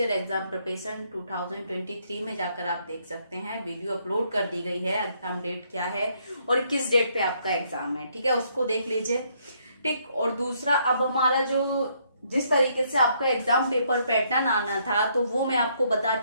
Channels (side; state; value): both; inverted; correlation -0.70